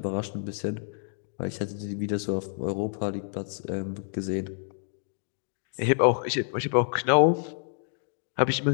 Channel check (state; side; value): silent; right; digital silence